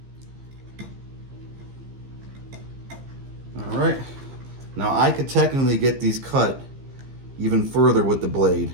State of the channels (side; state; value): left; late; 15 ms